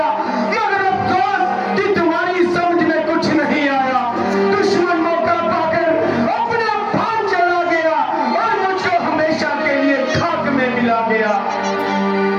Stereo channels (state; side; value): identical; both; correlation 1.00